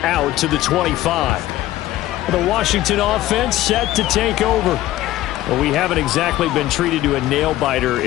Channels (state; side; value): quieter; right; 15.2 dB